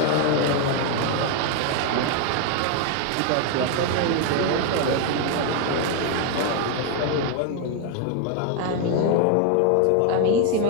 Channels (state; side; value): different; both; correlation 0.01